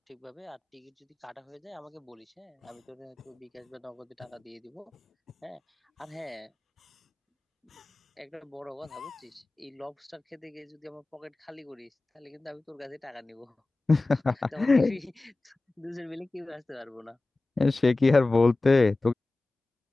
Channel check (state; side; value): quieter; right; 3.1 dB